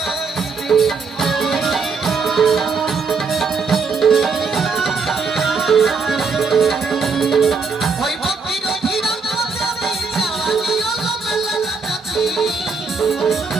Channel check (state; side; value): quieter; left; 4.8 dB